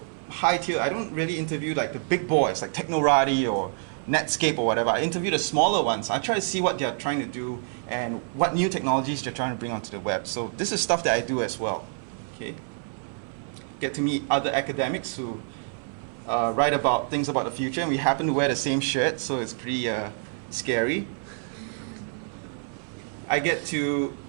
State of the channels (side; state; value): left; silent; 60 dB below the other